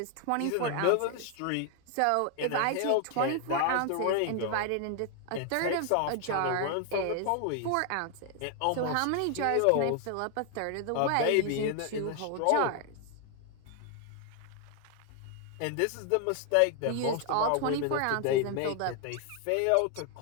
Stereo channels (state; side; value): different; both; correlation 0.00